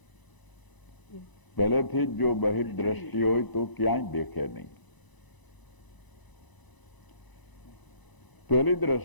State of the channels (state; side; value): late; right; 1.0 ms